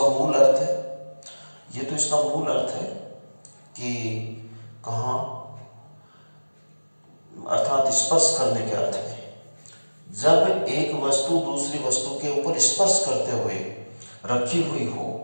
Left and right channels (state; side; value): inverted; both; correlation -1.00